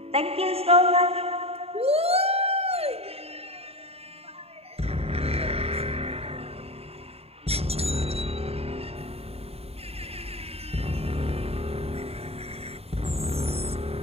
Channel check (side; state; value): left; late; 0.29 ms